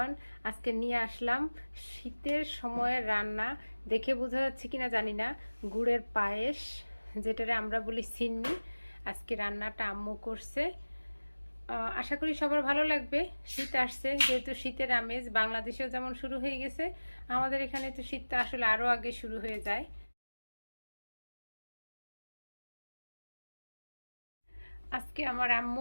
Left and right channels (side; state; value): both; inverted; correlation -1.00